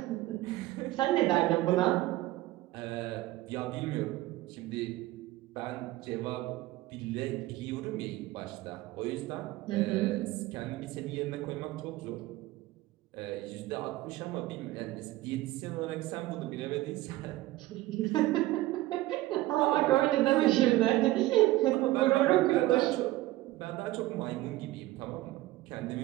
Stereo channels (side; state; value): left; quieter; 17.5 dB